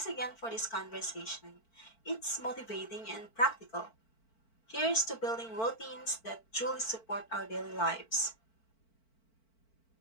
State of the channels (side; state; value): right; late; 4.5 ms